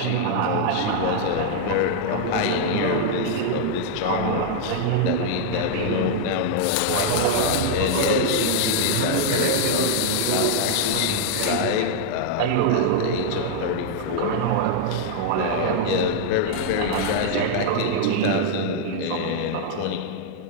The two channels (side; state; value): both; different; correlation -0.01